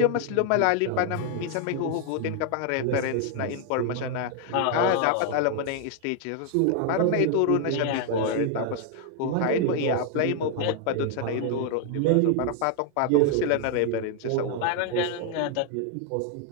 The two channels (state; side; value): different; both; correlation 0.00